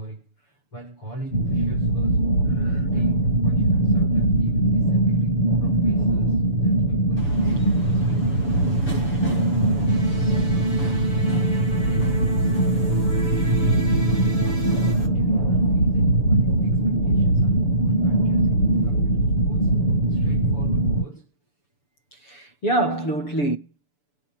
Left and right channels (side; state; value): right; late; 6.9 ms